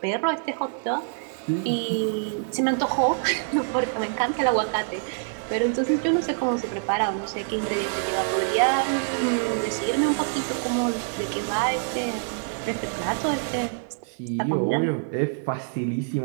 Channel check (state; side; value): silent; left; 56 dB below the other